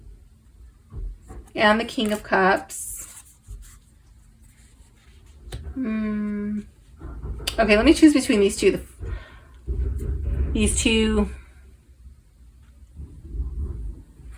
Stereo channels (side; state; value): both; identical; correlation 1.00